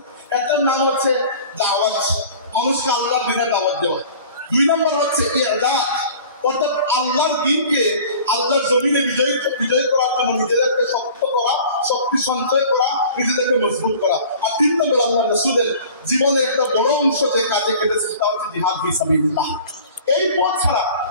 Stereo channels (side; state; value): both; inverted; correlation -0.45